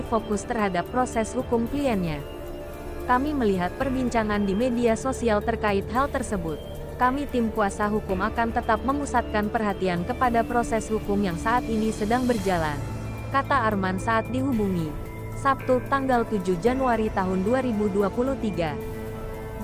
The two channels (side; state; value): both; identical; correlation 1.00